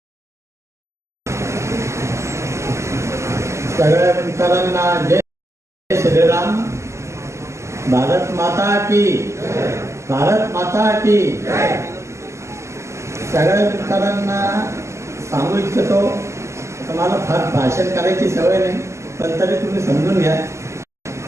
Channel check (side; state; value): left; late; 0.13 ms